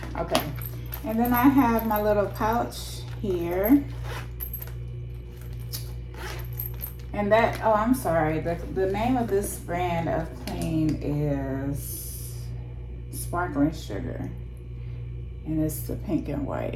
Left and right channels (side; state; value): both; identical; correlation 1.00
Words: Okay, and then I have my little pouch here. And that, oh, I'm sorry. The name of this brand of clean is Sparkling Sugar. And it's the pink and